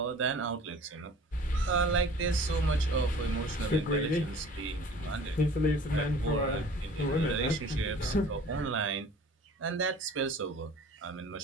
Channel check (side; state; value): both; normal; correlation 0.46